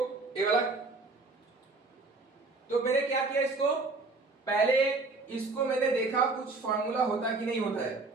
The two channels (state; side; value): quieter; left; 3.6 dB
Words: ये वाला। तो मैंने क्या किया, इसको पहले इसको मैंने देखा कुछ फॉर्मूला होता कि नहीं होता है।